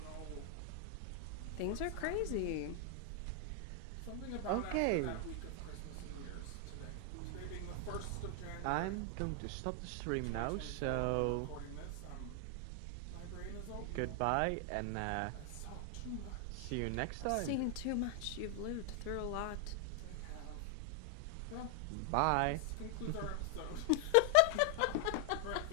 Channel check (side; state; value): both; different; correlation 0.00